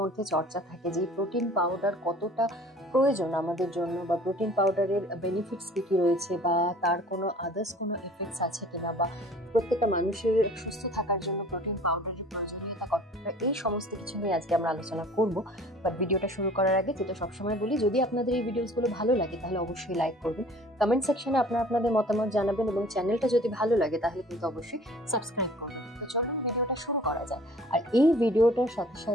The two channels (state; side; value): normal; both; correlation 0.49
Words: চর্চা থাকে যে প্রোটিন পাউডার কতটা প্রয়োজন আমাদের জন্য, বা প্রোটিন পাউডারের বেনিফিটস কি কি রয়েছে, বা তার কোনো আদার্স কোনো এফেক্টস আছে কিনা, বা প্রত্যেকটা মানুষের সুস্থ থাকার জন্য প্রোটিন পাউডারের প্রয়োজনীয়তা কতটা, এই সমস্ত কিছু নিয়ে আজকে আমরা আলোচনা করবো। বাট ভিডিওটা শুরু করার আগে যেটা সবসময় বলি, যদি আপনাদের এই ভিডিওসগুলো ভালো লাগে তাহলে অবশ্যই লাইক করবেন, কমেন্ট সেকশনে আপনাদের মতামত জানাবেন, এবং চ্যানেলটা যদি ভালো লাগে তাহলে কিন্তু অবশ্যই সাবস্ক্রাইব করবেন। তো চলুন ভিডিওটা শুরু করা যায়। আর এই ভিডিওটার সাথে